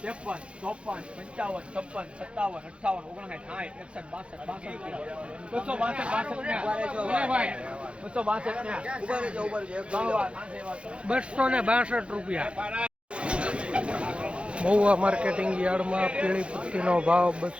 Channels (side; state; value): left; late; 0.059 ms